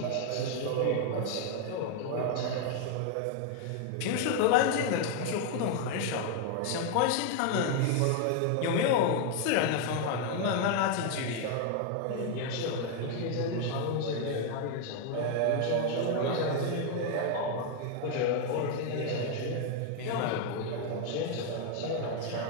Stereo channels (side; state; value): both; different; correlation 0.00